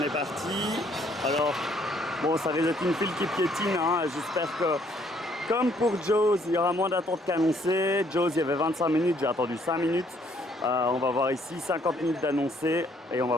est parti, alors bon ça risque d'être une file qui piétine, hein. J'espère que comme pour Jaws, il y aura moins d'attente qu'annoncé. Jaws, il y avait 25 minutes, j'ai attendu 5 minutes. On va voir ici 50 minutes d'annoncé et on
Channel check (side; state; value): both; normal; correlation 0.66